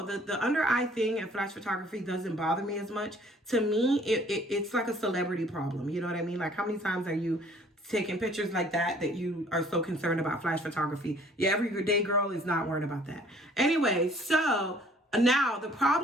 The under eye thing and flash photography doesn't bother me as much. To me, it's like a celebrity problem. You know what I mean? Like, how many times are you taking pictures like that you are so concerned about flash photography? Yeah, everyday girl is not worried about that. Anyway, so now, the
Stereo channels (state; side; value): normal; both; correlation 0.56